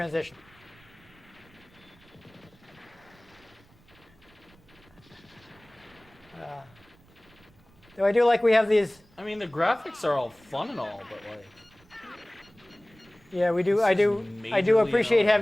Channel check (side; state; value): right; noise; rumble, 28 dB below the sound